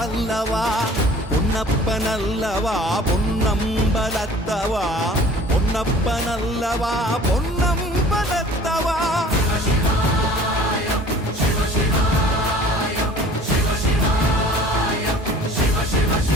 பொன்னப்பனல்லவா பொன்னம்பலத்தவா, பொன்னப்பனல்லவா பொன்னம்பலத்தவா.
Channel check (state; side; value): normal; both; correlation 0.48